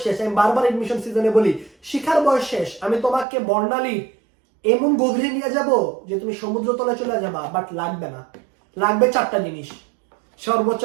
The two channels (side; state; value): left; drops out; at 3.2 s